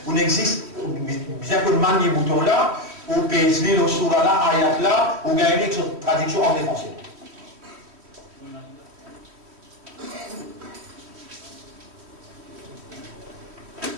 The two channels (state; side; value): late; left; 3.1 ms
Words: On existe, bien que le manier bouton là, ou PSD, le soura là, ayat là, ou gagner une traduction en français.